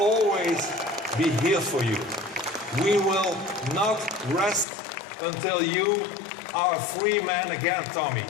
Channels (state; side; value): drops out; right; at 4.7 s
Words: be here for you. We will not rest until you are a free man again, Tommy.